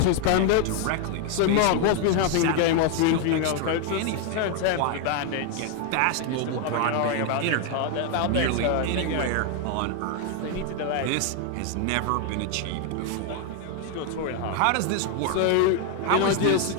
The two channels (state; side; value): different; both; correlation 0.00